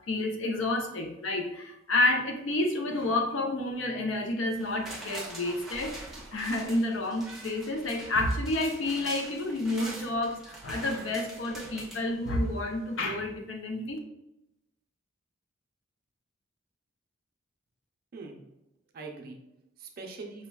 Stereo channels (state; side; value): normal; both; correlation 0.41